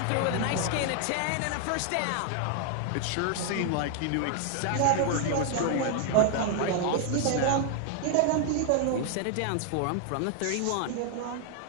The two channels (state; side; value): different; both; correlation 0.00